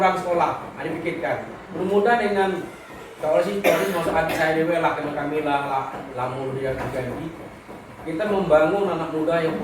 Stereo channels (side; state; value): both; identical; correlation 1.00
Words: sekolah? Dipikirkan. Mudah-mudahan dengan kalau sih masuk hati saya dewe lah karena kami lah lamun dia terjadi. Kita membangun anak muda yang